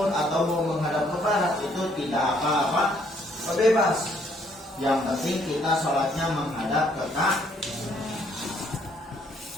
atau mau menghadap ke barat, itu tidak apa-apa, bebas. Yang penting kita sholatnya menghadap ke Ka'bah.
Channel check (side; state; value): both; normal; correlation 0.66